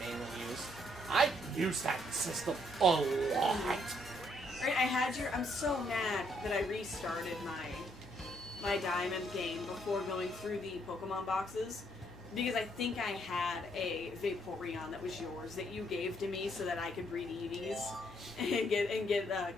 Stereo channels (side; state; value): both; normal; correlation 0.70